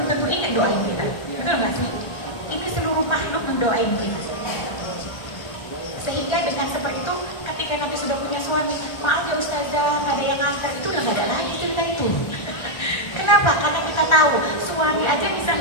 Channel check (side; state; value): right; late; 1.3 ms